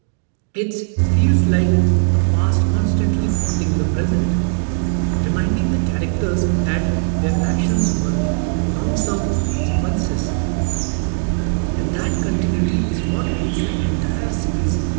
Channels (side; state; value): left; silent; digital silence